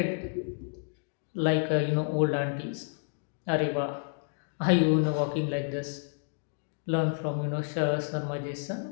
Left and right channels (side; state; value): right; silent; digital silence